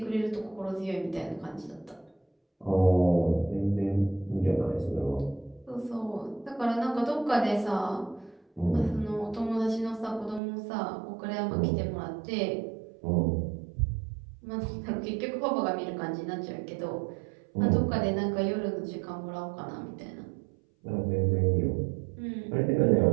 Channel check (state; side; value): drops out; left; at 10.4 s